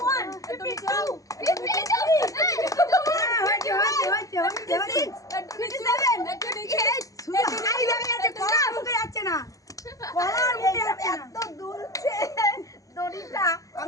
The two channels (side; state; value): right; late; 0.16 ms